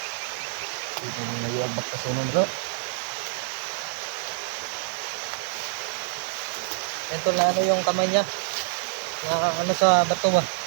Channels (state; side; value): silent; left; digital silence